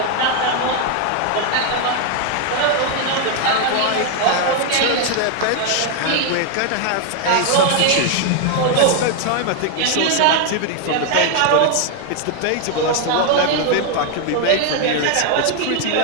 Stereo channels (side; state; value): both; different; correlation 0.00